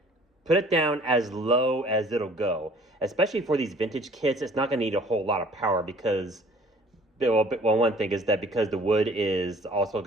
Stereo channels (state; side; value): normal; both; correlation 0.53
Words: put it down as low as it'll go. Especially for these vintage kits, it's not going to need a whole lot of power because, well, one thing is that because the wood is also